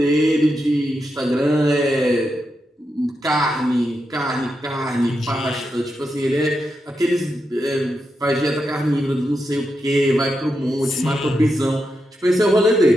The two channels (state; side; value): normal; both; correlation 0.86